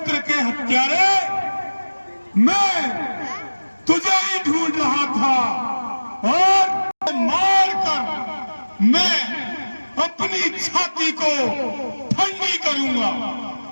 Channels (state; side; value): inverted; both; correlation -1.00